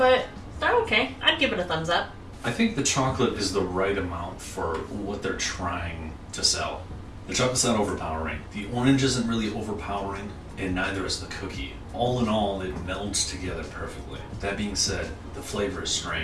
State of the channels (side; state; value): both; identical; correlation 1.00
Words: they're okay. I'd give it a thumbs up. I think the chocolate is the right amount for what they're trying to sell. The chocolate's not overpowering. The orange isn't really overpowering, and neither is the cookie. All in all, it melds together perfectly. That being said, the flavor is